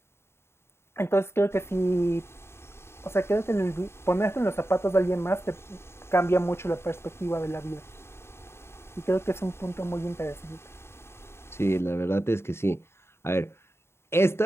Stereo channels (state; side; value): late; right; 0.12 ms